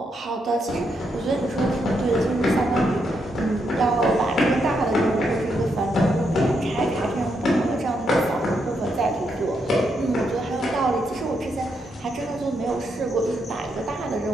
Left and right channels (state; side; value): normal; both; correlation 0.79